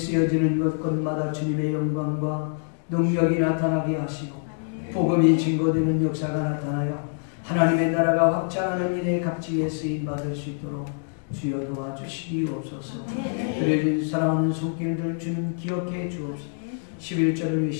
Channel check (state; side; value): silent; right; digital silence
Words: 곳곳마다 주님의 영광과 능력이 나타나게 하시고 복음이 증거되는 역사가 나타나요 하나님의 나라가 확장하는 일에 값지게 쓰임받을 수 있도록 주여 도와주시옵소서. 드려진 사랑하는 손길들 주님 기억해 주옵소서. 11절을